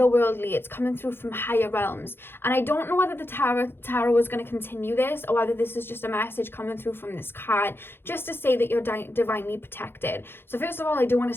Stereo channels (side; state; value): right; late; 0.11 ms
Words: It's coming through from higher realms. And I don't know whether the tarot is going to continue this or whether this is just a message coming through from this card just to say that you're divinely protected. So first of all, I do want